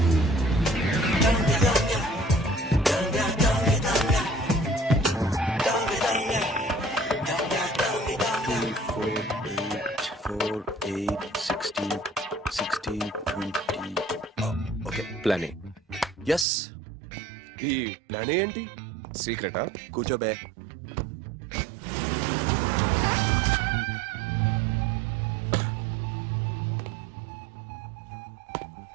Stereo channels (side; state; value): left; drops out; at 16.4 s